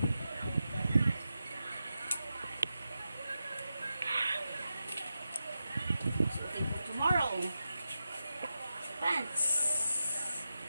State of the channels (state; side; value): inverted; both; correlation -0.90